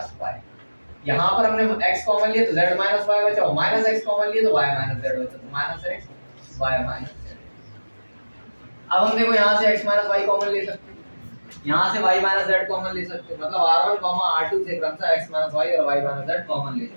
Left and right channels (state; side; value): inverted; both; correlation -1.00